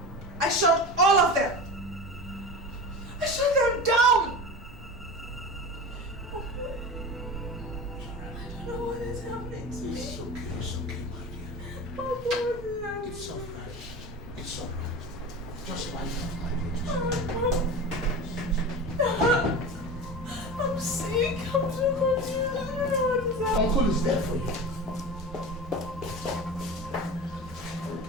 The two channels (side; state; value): both; normal; correlation 0.30